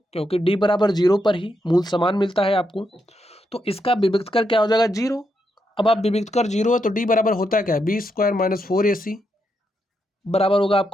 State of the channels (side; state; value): both; normal; correlation 0.82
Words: क्योंकि d बराबर 0 पर ही मूल समान मिलता है आपको, तो इसका विभक्त कर क्या हो जाएगा, 0। अब आप विभक्त कर 0 है तो d बराबर होता है क्या है, b² - 4ac बराबर होगा